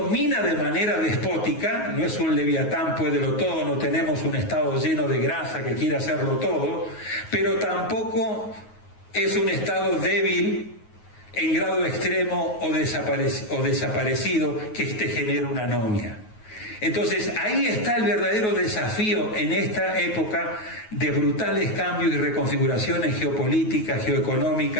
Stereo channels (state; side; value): late; right; 9.4 ms